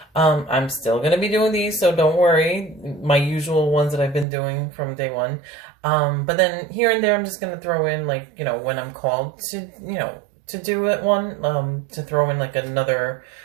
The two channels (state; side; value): drops out; left; at 4.2 s